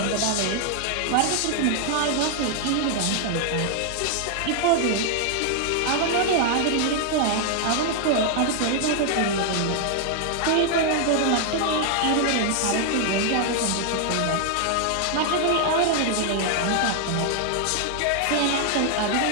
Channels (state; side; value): different; both; correlation 0.00